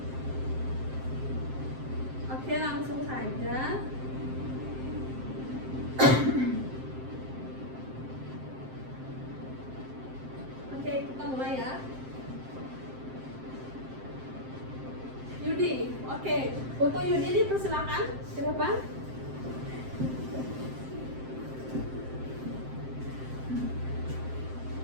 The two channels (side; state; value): left; late; 7.6 ms